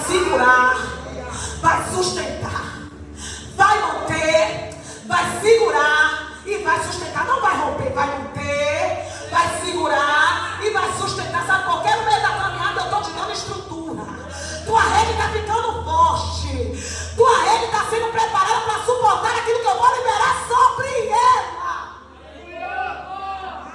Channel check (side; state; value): both; identical; correlation 1.00